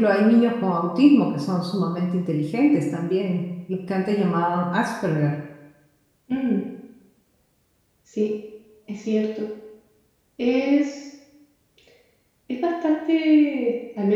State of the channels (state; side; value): identical; both; correlation 1.00